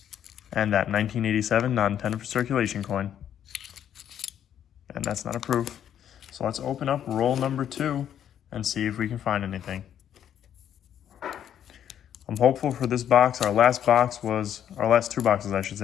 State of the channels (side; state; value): right; quieter; 9.9 dB